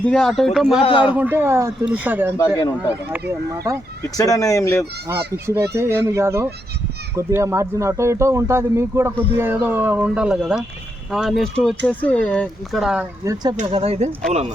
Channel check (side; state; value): both; normal; correlation 0.81